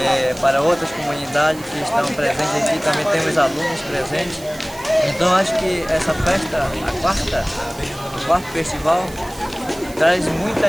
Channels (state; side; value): noise; right; hiss, 19 dB below the sound